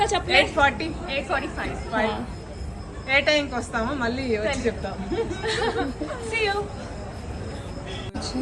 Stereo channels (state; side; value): identical; both; correlation 1.00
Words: చెప్పలేదు? 8:45. ఏ టైంకి వస్తామో మళ్ళీ వచ్చి చెప్తాము. See you.